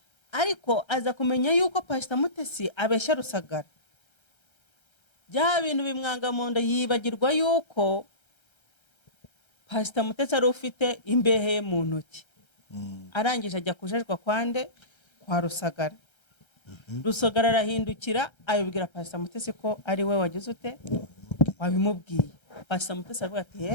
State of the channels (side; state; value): right; late; 1.3 ms